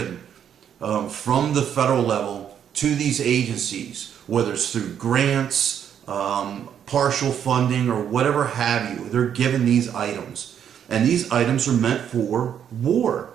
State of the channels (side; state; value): left; quieter; 8.9 dB